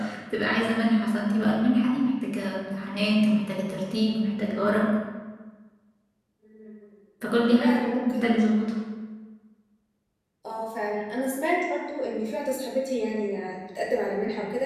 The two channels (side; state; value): both; identical; correlation 1.00